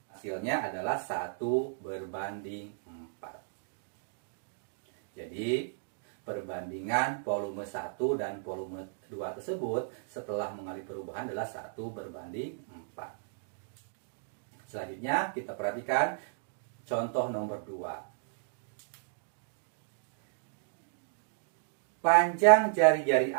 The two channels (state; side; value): silent; left; digital silence